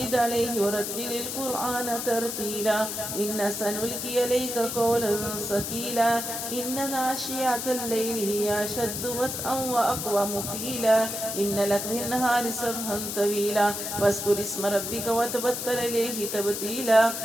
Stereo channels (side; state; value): left; noise; hiss, 4 dB below the sound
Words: عليه ورتل القرآن ترتيلا إن سنلقي عليك قولا ثقيلا إن ناشئة الليل هي أشد وطئا وأقوم قيلا إن لك في النهار سبحا طويلا واذكر اسم ربك وتبتل إليه تبتيلا